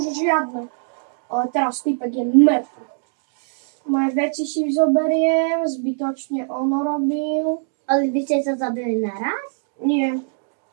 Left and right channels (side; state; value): left; silent; 64 dB below the other